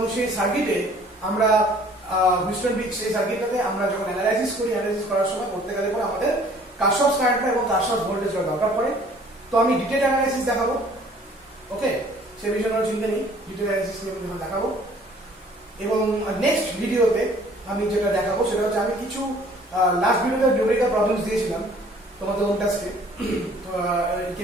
সেই সার্কিটে আমরা হুইস্টন ব্রিজ, সেই সার্কিটটাতে আমরা যখন অ্যানালাইসিস করার সময় করতে গেলে পরে আমাদের কারশফস কারেন্ট এবং কারশফস ভোল্টেজ দরকার পড়ে। তো আমি ডিটেইল অ্যানালাইসিস দেখাবো, ওকে, সে বিষয়ে কোনো চিন্তা নেই, ডিটেইল অ্যানালাইসিস নিয়ে আমি দেখাবো। এবং নেক্সট ভিডিওতে আমি যেটা দেখাবো সেটা হচ্ছে, আমি কিছু লাস্ট ভিডিওতে নিউমেরিক্যাল প্রবলেমস দিয়েছিলাম তোমাদের ওন টাস্কে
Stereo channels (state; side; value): normal; both; correlation 0.55